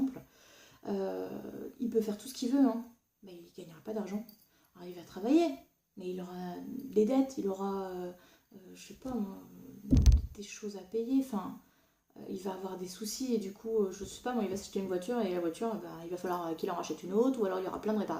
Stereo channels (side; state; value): both; identical; correlation 1.00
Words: il peut faire tout ce qu'il veut, hein, mais il ne gagnera pas d'argent. Alors il va travailler, mais il aura des dettes, il aura, je sais pas moi, des choses à payer, enfin, il va avoir des soucis et du coup, je sais pas moi, il va s'acheter une voiture et la voiture, il va falloir qu'il en rachète une autre ou alors il y aura plein de